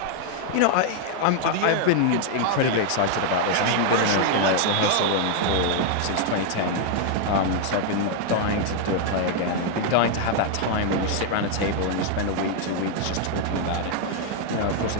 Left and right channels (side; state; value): both; different; correlation 0.00